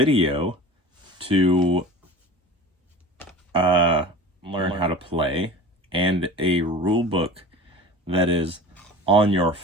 to learn how to play, and a rule book that is on your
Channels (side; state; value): both; normal; correlation 0.37